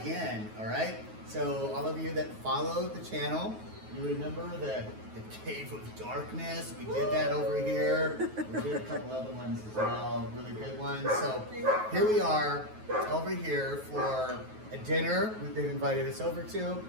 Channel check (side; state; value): left; late; 9.3 ms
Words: all right? So all of you that follow the channel, you remember the Cave of Darkness? We did that over here. We did a couple other ones as well, really good ones. So here we are over here for a dinner they've invited us over to.